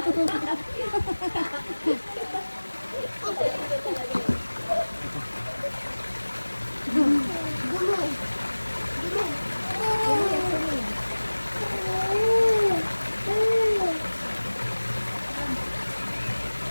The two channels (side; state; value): both; inverted; correlation -1.00